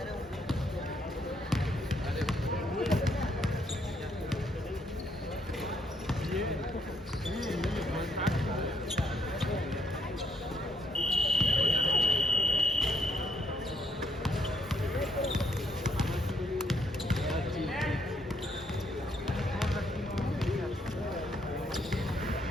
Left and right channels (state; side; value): normal; both; correlation 0.71